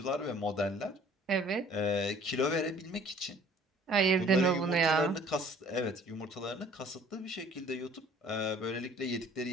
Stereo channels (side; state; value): both; normal; correlation 0.53